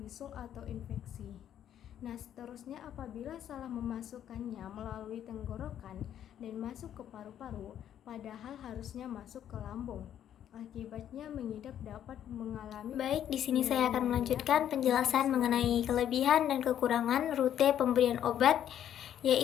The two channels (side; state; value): right; quieter; 10.3 dB